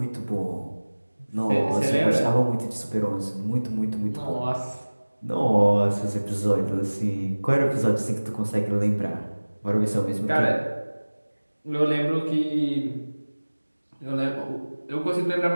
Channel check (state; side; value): inverted; both; correlation -1.00